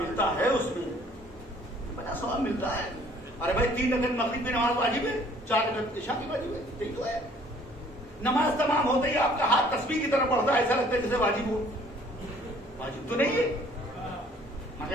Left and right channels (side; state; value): both; normal; correlation 0.57